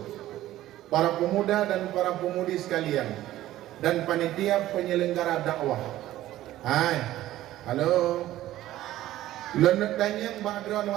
para pemuda dan para pemudi sekalian dan panitia penyelenggara dakwah. Hai, halo. Lenek tanya background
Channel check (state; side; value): quieter; left; 14.5 dB